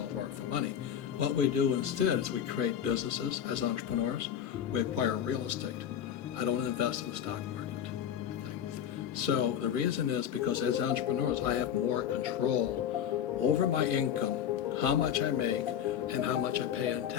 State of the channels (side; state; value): right; quieter; 9.4 dB